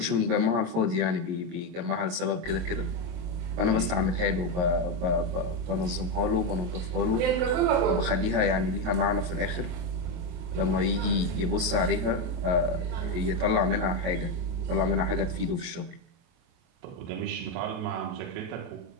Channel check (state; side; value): late; left; 22 ms